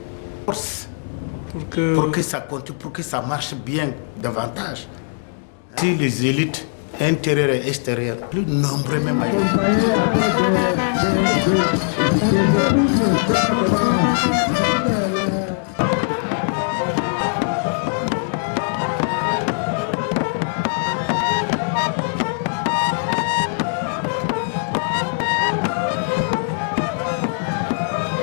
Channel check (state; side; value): silent; right; 65 dB below the other